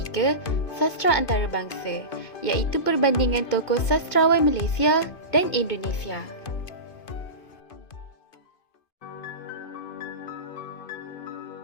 Sastra Antarabangsa, iaitu perbandingan tokoh sastrawan Malaysia dan Indonesia.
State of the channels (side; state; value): right; late; 2.5 ms